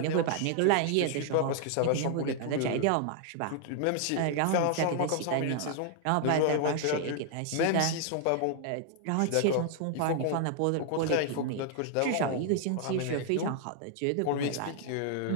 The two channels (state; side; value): different; both; correlation 0.00